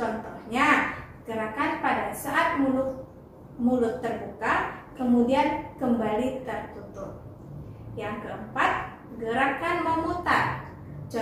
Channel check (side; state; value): both; identical; correlation 1.00